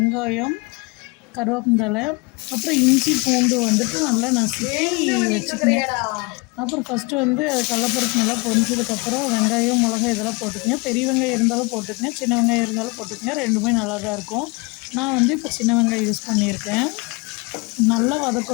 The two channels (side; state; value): right; quieter; 27.7 dB